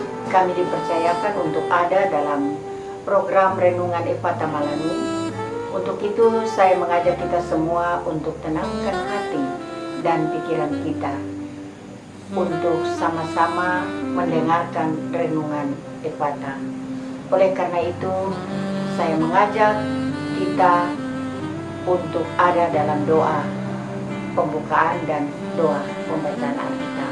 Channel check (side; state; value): both; identical; correlation 1.00